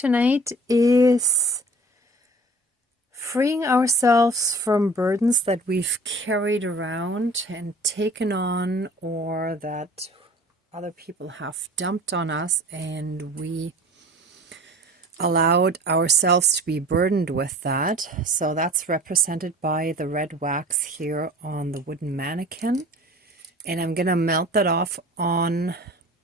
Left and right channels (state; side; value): normal; both; correlation 0.44